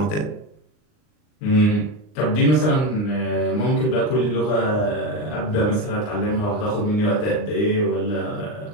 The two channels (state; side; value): late; right; 39 ms